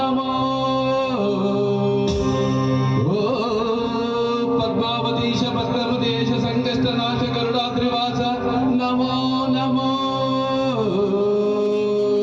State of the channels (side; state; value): both; identical; correlation 1.00